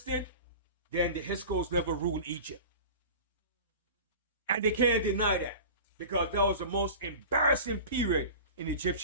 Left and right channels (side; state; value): both; inverted; correlation -0.36